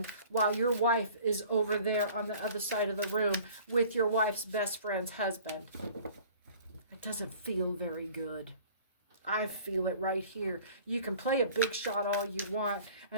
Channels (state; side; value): inverted; both; correlation -0.49